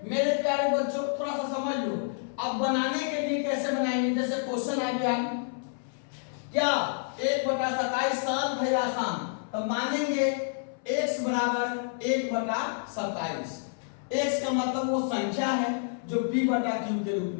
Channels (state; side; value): silent; right; 59 dB below the other